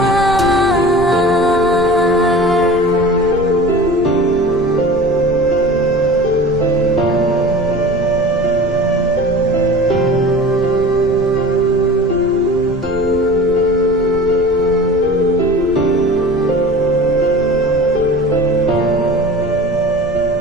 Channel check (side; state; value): right; noise; rumble, 14 dB below the sound